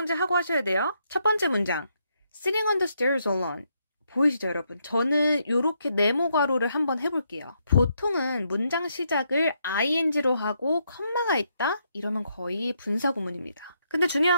하고 하셔야 돼요. 첫 번째 문장, Sitting on the stairs alone. 보이시죠, 여러분? 저는 이렇게 네모 괄호를 한번 해볼게요. 보통은 문장 시작을 ing로 하고 컴마가 있다? 이러면 거의 분사구문입니다. 근데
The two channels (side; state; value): both; inverted; correlation -0.77